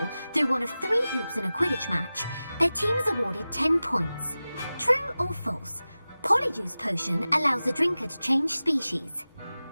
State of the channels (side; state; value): both; inverted; correlation -0.96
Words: through one of 3 hoops in a Quidditch match, their team is awarded 10 points. True or false? Polyjuice Potion allows the drinker to change species.